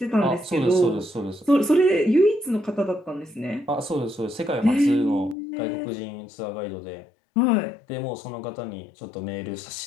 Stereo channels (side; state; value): right; drops out; at 5.4 s